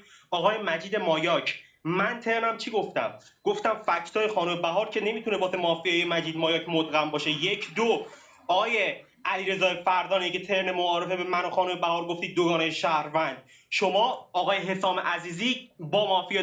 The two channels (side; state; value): both; identical; correlation 1.00